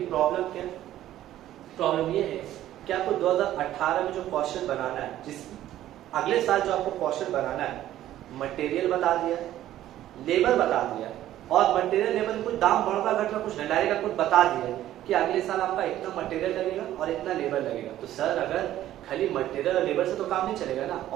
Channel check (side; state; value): left; quieter; 13.1 dB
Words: प्रॉब्लम क्या, प्रॉब्लम ये है कि आपको 2018 में जो क्वेश्चन बनाना है, जिस अगले साल जो आपको क्वेश्चन बनाना है, मटेरियल बता दिया, लेबर बता दिया, और मटेरियल लेबर कुछ दाम बढ़ता घटना कुछ नहीं, डायरेक्ट आपको बता दिया कि अगले साल आपका इतना मटेरियल लगेगा और इतना लेबर लगेगा। तो सर अगर खाली मटेरियल और लेबर से तो काम नहीं चलेगा ना,